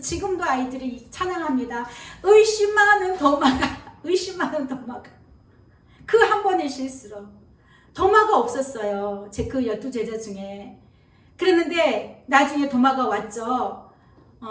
아이들이 찬양합니다. 의심하는 도마가 그 한 번의 실수로 도마가 없었어요. 제 그 12제자 중에. 그랬는데 나중에 도마가 왔죠.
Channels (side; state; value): both; identical; correlation 1.00